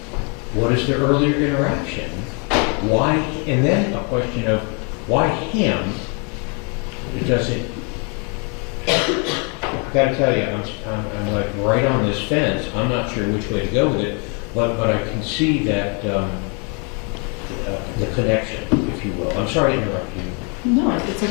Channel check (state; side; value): quieter; right; 35.8 dB